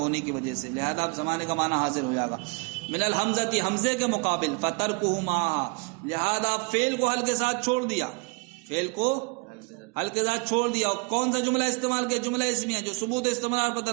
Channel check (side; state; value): left; quieter; 31.3 dB